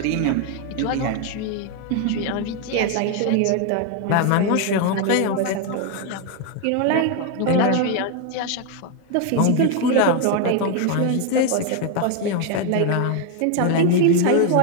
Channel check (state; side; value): different; both; correlation 0.01